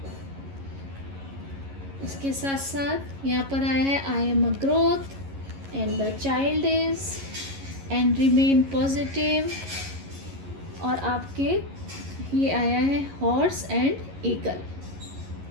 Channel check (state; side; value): late; left; 11 ms